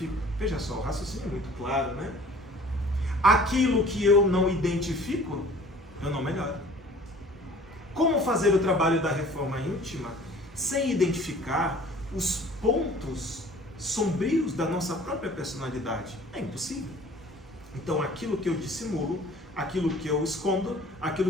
Veja só, o raciocínio é muito claro, né? Aquilo que eu não identifico, eu não melhoro. Como fazer o trabalho da reforma íntima sem identificar os pontos sombrios da nossa própria personalidade? É impossível. Então, aquilo que eu dissimulo, aquilo que eu escondo,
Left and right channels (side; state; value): both; normal; correlation 0.49